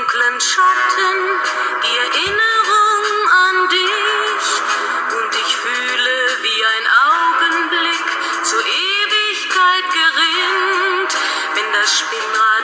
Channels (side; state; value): both; identical; correlation 1.00